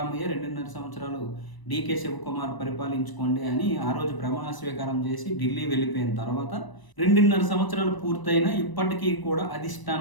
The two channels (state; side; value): late; right; 1.0 ms